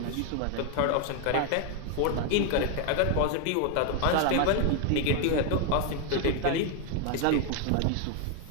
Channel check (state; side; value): different; both; correlation 0.01